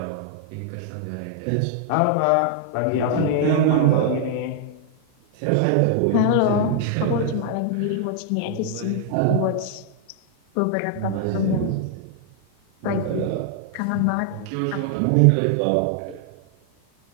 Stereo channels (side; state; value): both; different; correlation -0.01